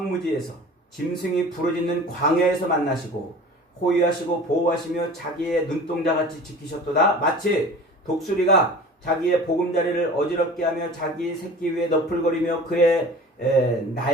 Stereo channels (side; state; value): both; normal; correlation 0.40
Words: 짐승이 부르짖는 광야에서 만나시고 호위하시고 보호하시며 자기의 눈동자같이 지키셨도다. 마치 독수리가 자기의 보금자리를 어지럽게 하며 자기 새끼 위에 너풀거리며 그의